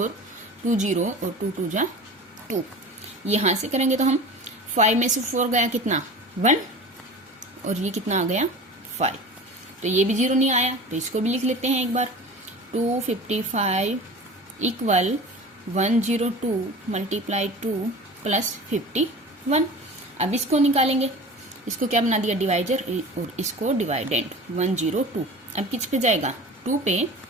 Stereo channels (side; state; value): both; normal; correlation 0.37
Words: 2 0 और 2 2 जा 2, यहां से करेंगे तो हम 5 में से 4 गया कितना 1 और ये कितना आ गया 5, तो ये भी 0 नहीं आया, तो इसको भी लिख लेते हैं एक बार 255 इक्वल 102 मल्टीप्लाई 2 प्लस 51। अब इसको निकालेंगे, इसको क्या बना दिया डिवाइजर और इसको डिवाइडेंड 102, अब किस पे जाएगा 2 पे